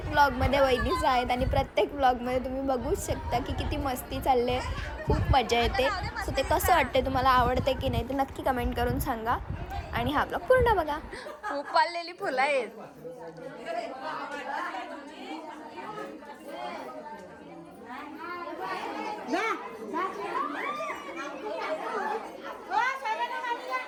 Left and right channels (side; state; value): both; identical; correlation 1.00